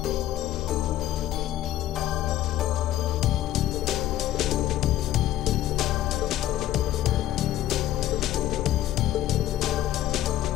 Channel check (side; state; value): right; quieter; 13.2 dB